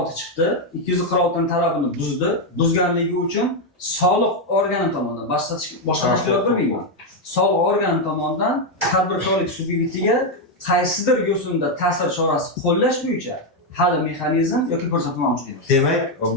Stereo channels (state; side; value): normal; both; correlation 0.04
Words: chiqdi. 246 talabini buzdi. Buzganligi uchun soliq organi tomonidan boshqa tashkilot bilmayman. Soliq organi tomonidan tadbirkorlik subyektiga qaysidir yo'sinda ta'sir chorasi qo'llash bo'yicha hali mexanizm yoki ko'rsatma mavjud emas. Demak,